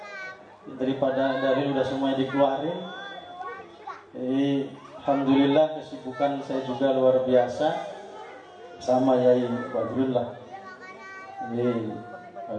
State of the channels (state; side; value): identical; both; correlation 1.00